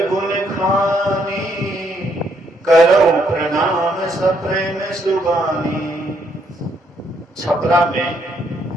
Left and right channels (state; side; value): normal; both; correlation 0.72